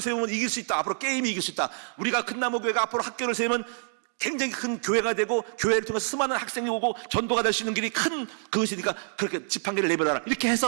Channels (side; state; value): left; silent; digital silence